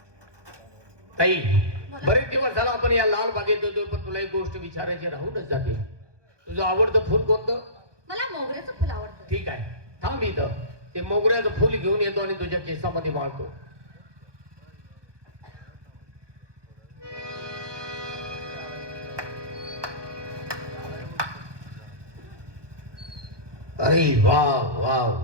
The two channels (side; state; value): left; late; 1.2 ms